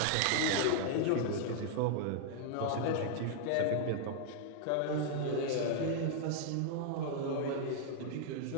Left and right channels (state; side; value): different; both; correlation -0.01